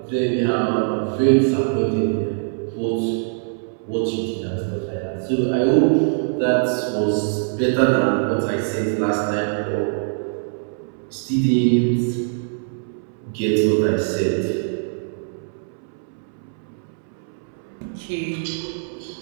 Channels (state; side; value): silent; left; 64 dB below the other